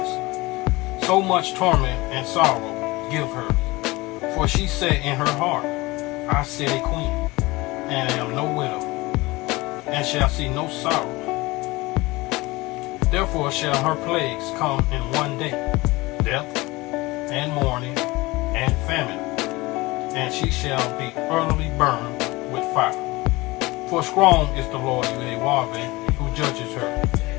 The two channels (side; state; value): right; quieter; 21.7 dB